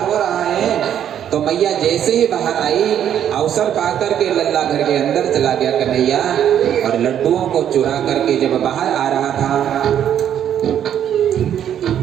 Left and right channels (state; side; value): quieter; left; 9.8 dB